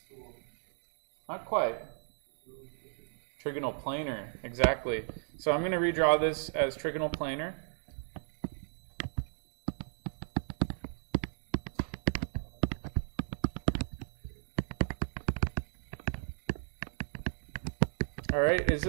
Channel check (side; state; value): left; silent; digital silence